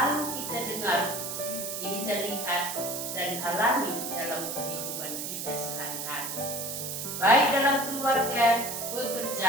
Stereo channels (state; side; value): noise; right; hiss, 5 dB below the sound